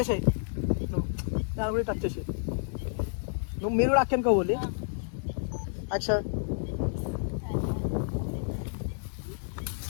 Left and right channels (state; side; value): silent; right; 58 dB below the other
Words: దాని కూడా టచ్ చేసేయి. నువ్వు మీరు కూడా అక్కడికి పోవాలి. యాక్షన్.